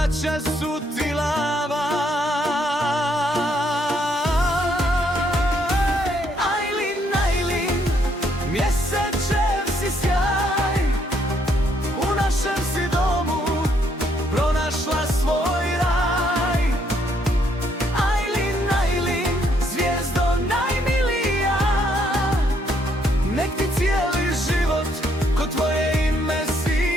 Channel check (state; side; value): normal; both; correlation 0.71